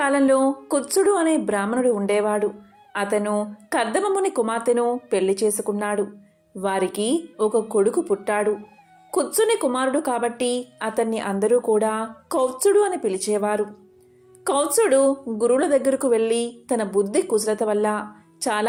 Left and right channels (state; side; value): identical; both; correlation 1.00